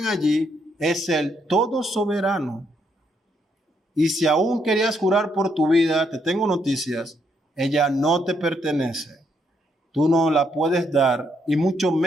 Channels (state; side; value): normal; both; correlation 0.75